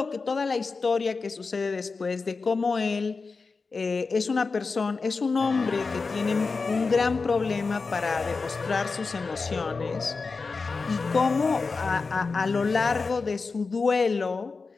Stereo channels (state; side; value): quieter; right; 4.4 dB